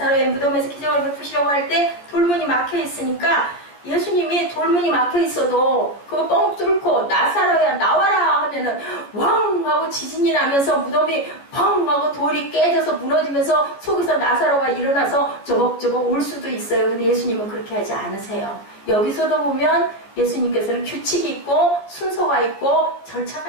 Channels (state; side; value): late; right; 14 ms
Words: 무덤에서 기적을 베푸시려고 할 때 돌문이 막혀 있으니까 예수님이 돌문이 막혀 있어도 그거 뻥 뚫고 나사로야 나와라 하면은 왕 하고 지진이 나면서 무덤이 펑 하고 돌이 깨져서 무너지면서 속에서 나사로가 일어나서 저벅저벅 올 수도 있어요. 근데 예수님은 그렇게 하지 않으세요. 여기서도 보면 예수님께서는 규칙이 있고 순서가 있고